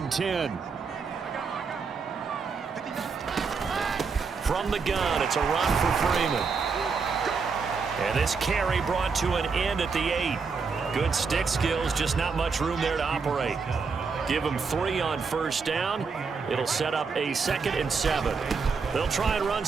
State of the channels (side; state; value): left; quieter; 5.1 dB